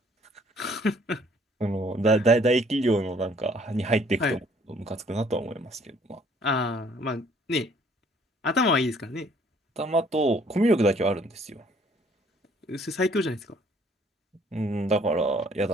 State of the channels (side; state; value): both; normal; correlation 0.60